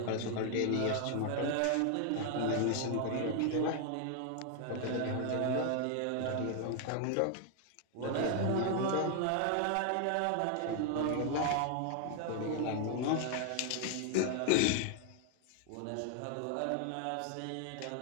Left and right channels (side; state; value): both; different; correlation 0.00